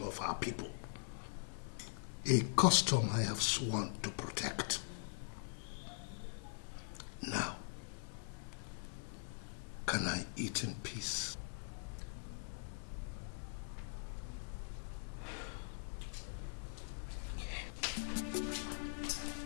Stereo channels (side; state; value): right; silent; digital silence